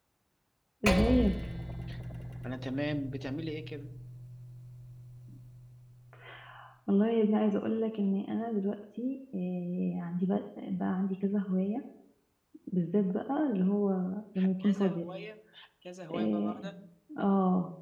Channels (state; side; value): identical; both; correlation 1.00